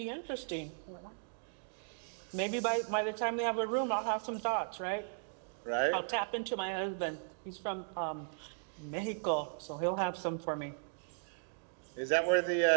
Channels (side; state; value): left; silent; digital silence